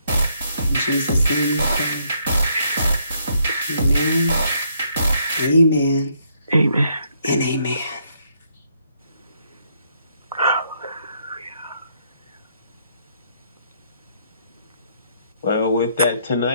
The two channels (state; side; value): inverted; both; correlation -0.72